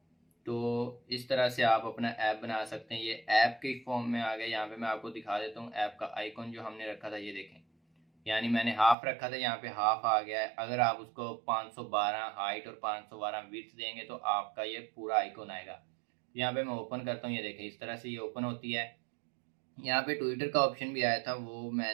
तो इस तरह से आप अपना ऐप बना सकते हैं। ये ऐप के फॉर्म में आ गया। यहाँ पे मैं आपको दिखा देता हूँ ऐप का आइकॉन जो हमने रखा था, ये देखें। यानी मैंने हाफ रखा था, यहाँ पे हाफ आ गया है। अगर आप उसको 512 हाइट और 512 विड्थ देंगे तो आपका ये पूरा आइकॉन आएगा। यहाँ पे मैं ओपन करता हूँ, ये देखें इस तरह से ये ओपन होती है। यहाँ पे ट्विटर का ऑप्शन भी आया था, वो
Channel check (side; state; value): left; drops out; at 9.0 s